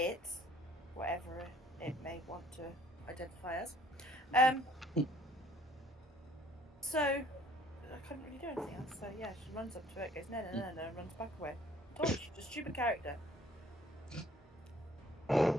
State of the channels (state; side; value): normal; both; correlation 0.57